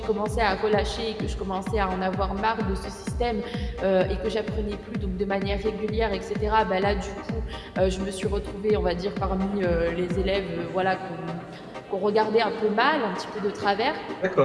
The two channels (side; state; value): both; identical; correlation 1.00